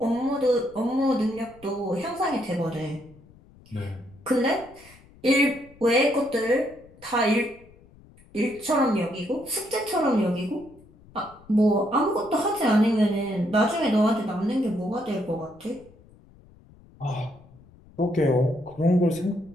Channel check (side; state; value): left; noise; rumble, 25 dB below the sound